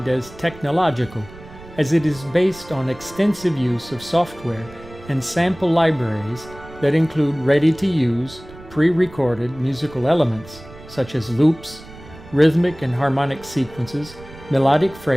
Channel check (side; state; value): right; noise; rumble, 19 dB below the sound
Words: as technological, as it is based on extensive use of software and sample libraries that include ready-to-use, pre-recorded musical elements such as loops, rhythmic and harmonic sequences, melodic